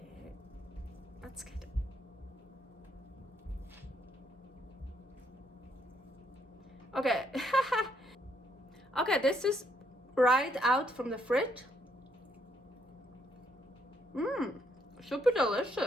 that's good. Okay, okay, this is right out from the fridge. Super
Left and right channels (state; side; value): normal; both; correlation 0.72